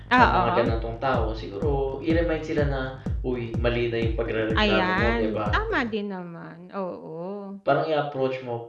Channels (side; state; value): both; identical; correlation 1.00